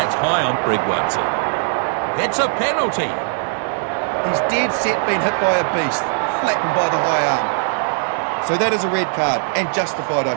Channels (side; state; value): left; silent; 62 dB below the other